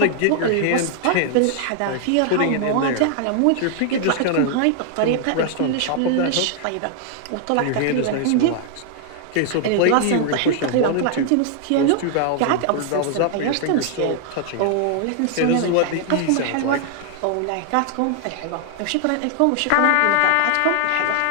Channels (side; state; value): both; different; correlation 0.00